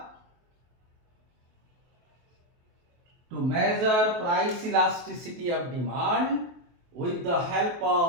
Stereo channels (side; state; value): left; late; 23 ms